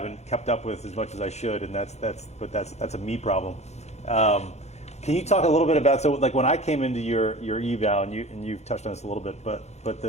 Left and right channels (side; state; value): right; late; 0.32 ms